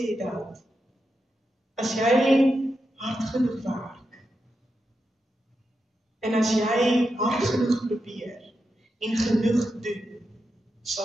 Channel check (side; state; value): both; normal; correlation 0.87